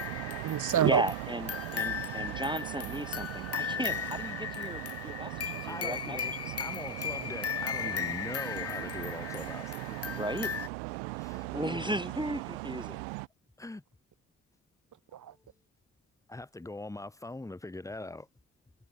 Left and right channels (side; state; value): both; normal; correlation 0.11